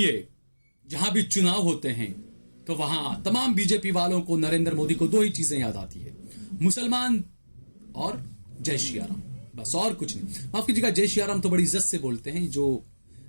जहां भी चुनाव होते हैं तो वहां तमाम बीजेपी वालों को नरेंद्र मोदी को दो ही चीजें याद आती है, मुसलमान और जय श्री राम, बस और कुछ नहीं। माफ कीजिएगा, जय श्री राम तो बड़ी इज्जत से बोलते हैं,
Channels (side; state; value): both; inverted; correlation -1.00